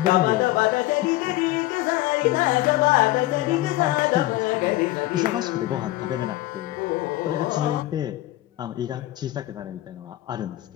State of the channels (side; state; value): right; quieter; 17.0 dB